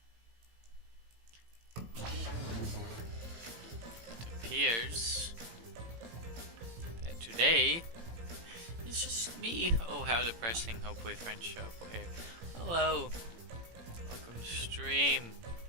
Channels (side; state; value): left; late; 18 ms